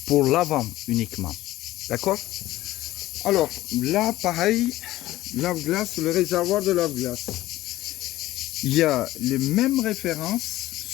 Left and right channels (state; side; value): quieter; right; 16.1 dB